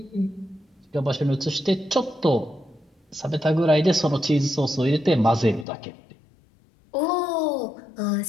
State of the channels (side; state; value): right; drops out; at 5.7 s